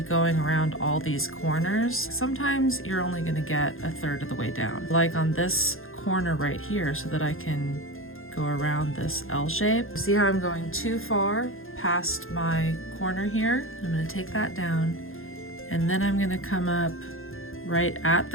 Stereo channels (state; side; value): late; right; 0.60 ms